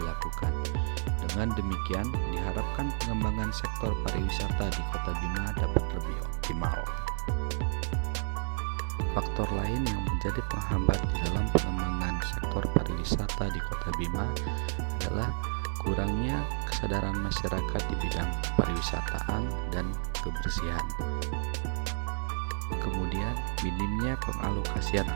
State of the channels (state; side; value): silent; left; digital silence